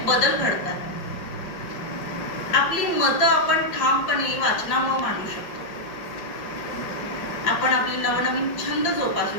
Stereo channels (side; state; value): right; late; 5.7 ms